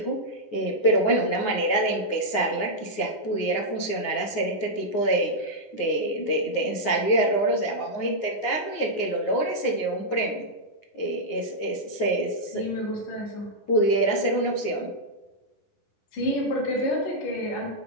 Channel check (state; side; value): late; right; 9.6 ms